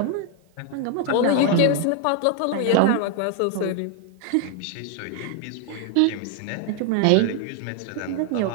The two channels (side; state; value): both; different; correlation 0.00